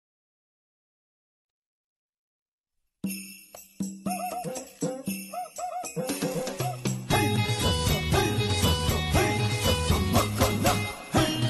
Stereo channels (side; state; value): both; identical; correlation 1.00